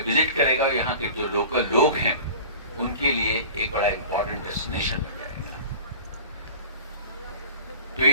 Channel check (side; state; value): both; inverted; correlation -0.40